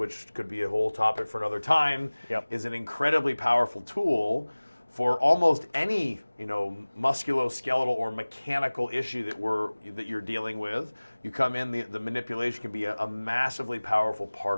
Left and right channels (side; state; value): both; inverted; correlation -1.00